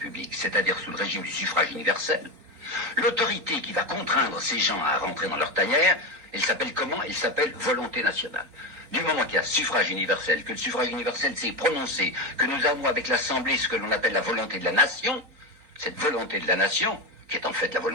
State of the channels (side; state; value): left; late; 4.3 ms